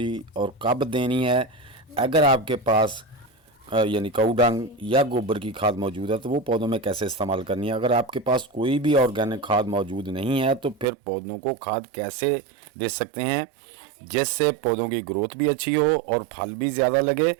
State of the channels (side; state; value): left; drops out; at 10.9 s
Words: और कब देनी है। अगर आपके पास यानी काऊ डंग या गोबर की खाद मौजूद है तो वो पौधों में कैसे इस्तेमाल करनी है। अगर आपके पास कोई भी ऑर्गेनिक खाद मौजूद नहीं है तो फिर पौधों को खाद कैसे दे सकते हैं जिससे पौधों की ग्रोथ भी अच्छी हो और फल भी ज़्यादा लगे।